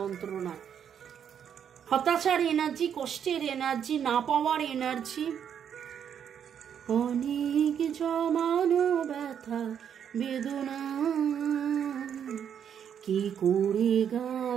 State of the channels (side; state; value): left; quieter; 8.4 dB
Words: হতাশার এনার্জি, কষ্টের এনার্জি, না পাওয়ার এনার্জি, অনেক জমানো ব্যথা বেদনা, কি করে